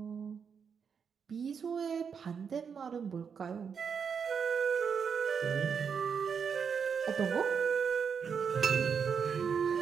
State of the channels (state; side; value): quieter; left; 6.6 dB